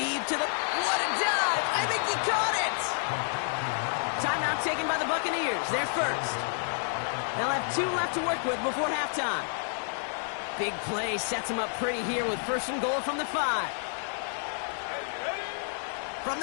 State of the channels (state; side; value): silent; right; 58 dB below the other